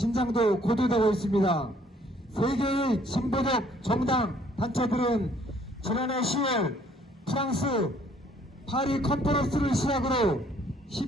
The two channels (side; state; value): both; normal; correlation 0.62